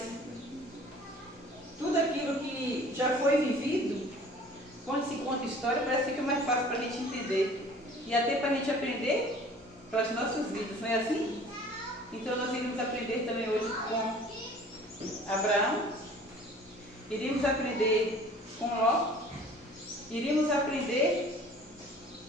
Tudo aquilo que já foi vivido, quando se conta história, parece que fica mais fácil para a gente entender. E até para a gente aprender para as nossas vidas, não é assim? Então nós iremos aprender também hoje com Abraão, iremos aprender com Ló, iremos aprender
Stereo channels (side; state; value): both; normal; correlation 0.49